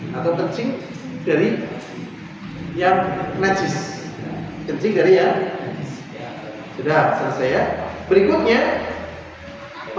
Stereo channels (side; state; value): both; identical; correlation 1.00